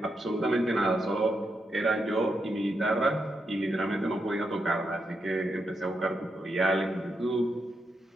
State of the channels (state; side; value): normal; both; correlation 0.83